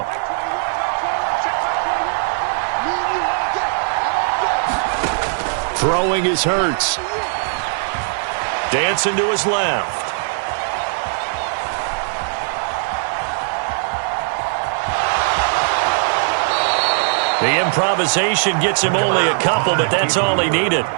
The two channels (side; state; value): left; silent; 56 dB below the other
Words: Throwing is Hurts. Dancing to his left. The improvisation gets him only a couple, but that's all he needed.